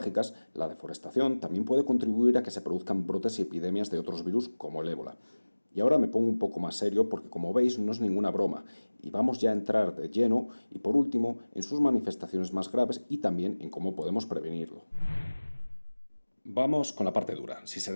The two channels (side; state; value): both; inverted; correlation -1.00